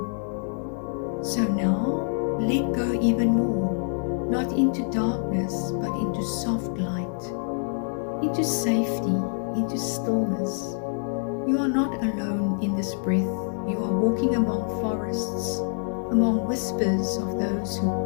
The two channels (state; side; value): silent; right; 61 dB below the other